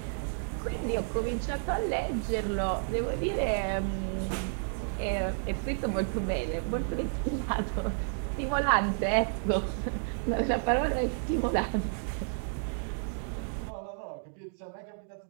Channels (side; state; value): left; silent; digital silence